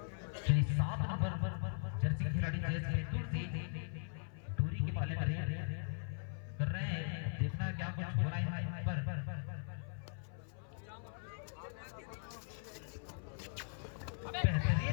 श्री 7 नंबर जर्सी खिलाड़ी जैस हेतु से दूरी के पाले में कर रहे हैं। देखना क्या कुछ हो रहा है यहाँ पर।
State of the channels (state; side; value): silent; right; 51 dB below the other